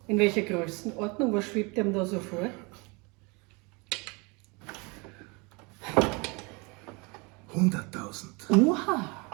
In welcher Größenordnung? Was schwebt dem da so vor? 100.000. Oha!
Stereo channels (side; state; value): left; quieter; 28.8 dB